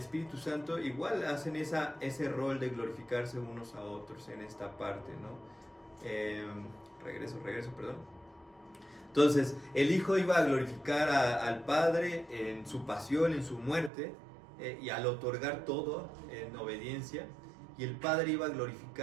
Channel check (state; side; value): drops out; left; at 13.9 s